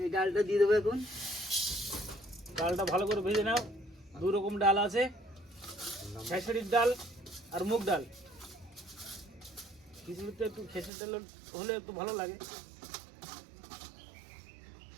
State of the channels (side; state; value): left; drops out; at 10.9 s